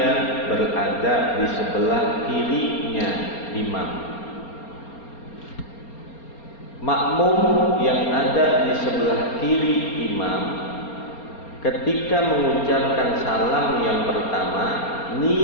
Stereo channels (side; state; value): right; late; 4.3 ms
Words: berada di sebelah kirinya imam. makmum yang ada di sebelah kiri imam ketika mengucapkan salam yang pertama